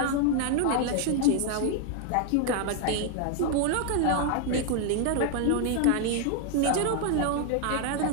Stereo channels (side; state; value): both; different; correlation 0.00